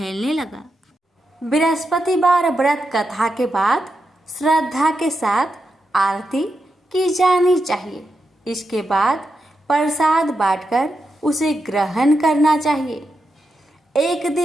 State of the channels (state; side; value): normal; both; correlation 0.87